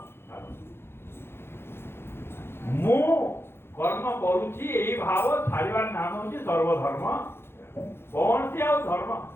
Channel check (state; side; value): late; right; 0.11 ms